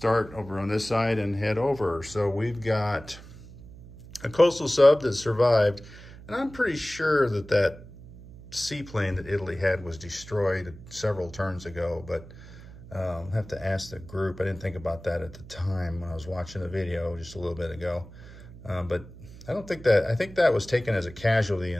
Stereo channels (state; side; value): noise; right; hum, 17 dB below the sound